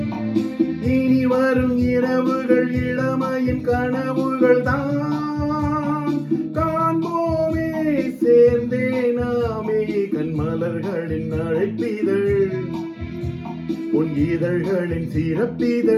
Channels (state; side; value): identical; both; correlation 1.00